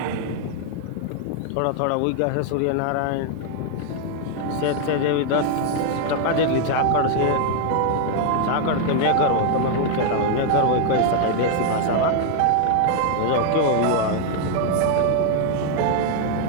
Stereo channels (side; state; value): both; different; correlation 0.00